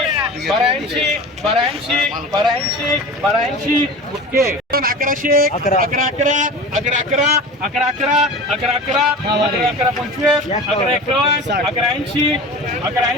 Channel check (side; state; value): both; normal; correlation 0.34